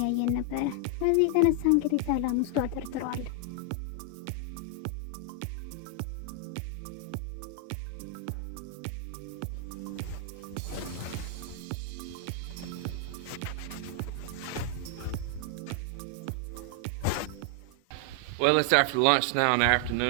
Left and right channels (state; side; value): different; both; correlation 0.00